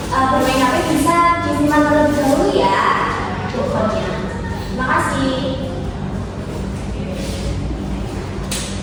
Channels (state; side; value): identical; both; correlation 1.00